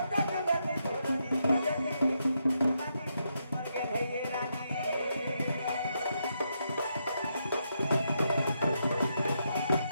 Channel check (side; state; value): both; inverted; correlation -0.81